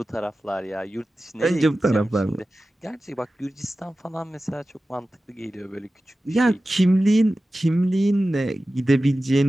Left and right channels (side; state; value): both; normal; correlation 0.95